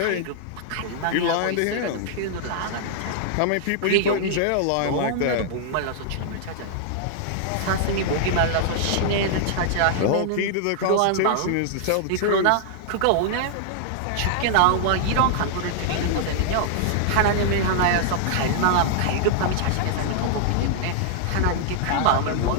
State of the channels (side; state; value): both; different; correlation -0.01